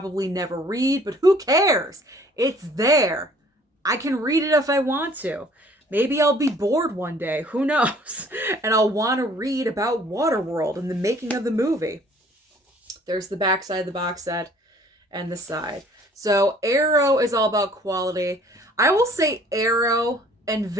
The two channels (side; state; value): both; normal; correlation 0.55